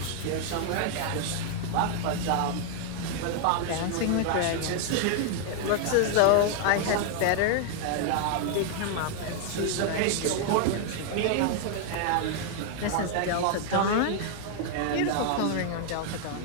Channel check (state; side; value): different; both; correlation 0.00